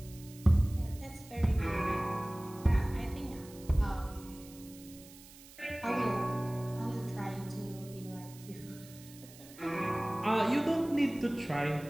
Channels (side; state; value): right; noise; hiss, 20 dB below the sound